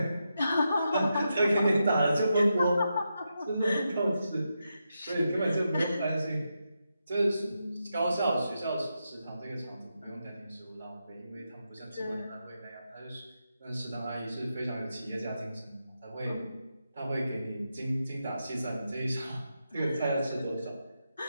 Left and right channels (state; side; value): inverted; both; correlation -0.86